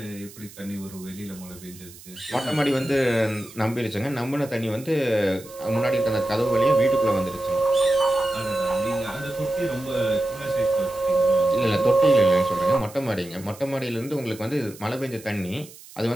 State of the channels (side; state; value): right; noise; hiss, 19 dB below the sound